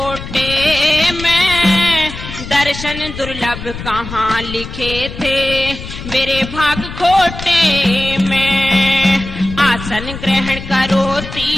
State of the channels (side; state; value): left; noise; rumble, 10 dB below the sound